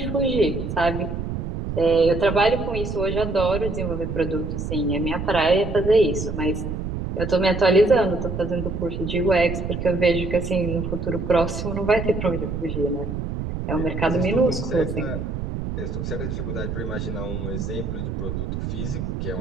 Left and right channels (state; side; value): noise; right; rumble, 4 dB below the sound